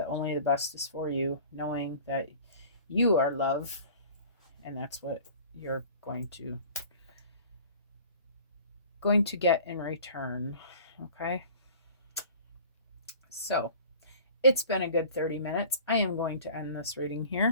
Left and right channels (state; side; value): inverted; both; correlation -0.44